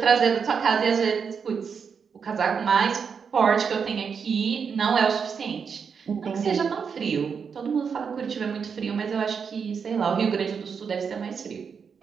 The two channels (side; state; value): left; quieter; 6.3 dB